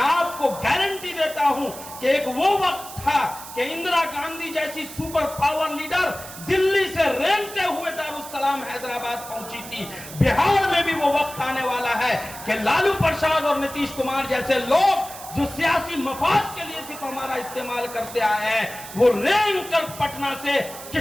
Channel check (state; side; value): noise; right; hiss, 13 dB below the sound